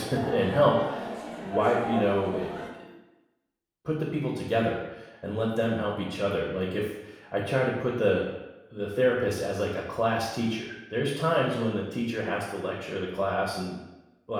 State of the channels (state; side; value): identical; both; correlation 1.00